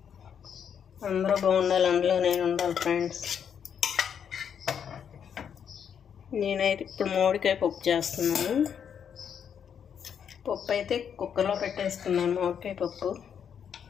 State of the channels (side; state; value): right; quieter; 7.9 dB